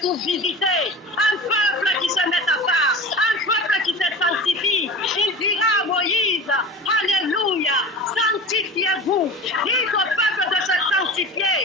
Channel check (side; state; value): both; normal; correlation 0.34